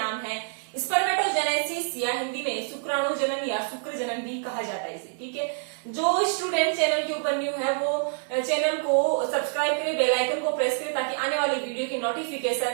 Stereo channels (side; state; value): left; silent; 60 dB below the other